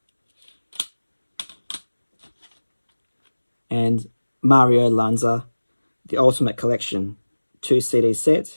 And Mario Lanza, The Ultimate Collection, 2 CD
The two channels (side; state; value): both; inverted; correlation -1.00